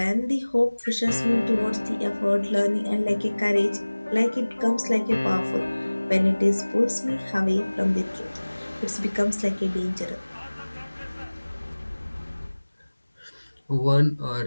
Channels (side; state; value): both; inverted; correlation -1.00